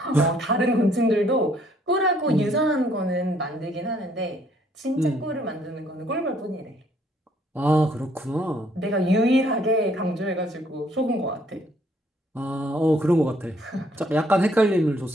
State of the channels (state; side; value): normal; both; correlation 0.65